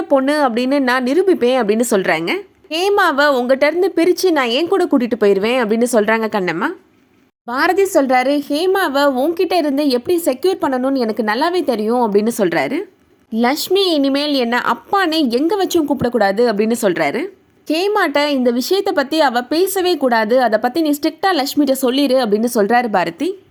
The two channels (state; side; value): identical; both; correlation 1.00